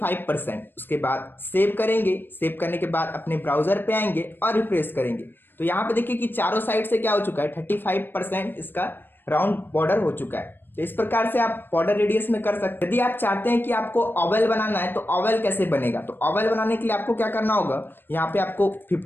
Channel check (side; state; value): right; late; 0.096 ms